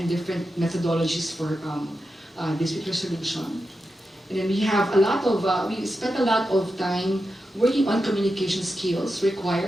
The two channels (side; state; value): both; normal; correlation 0.89